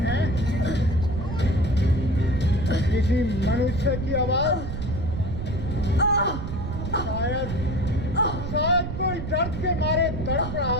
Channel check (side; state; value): right; noise; rumble, 5 dB below the sound